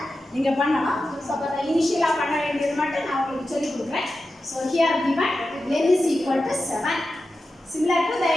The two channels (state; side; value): normal; both; correlation 0.92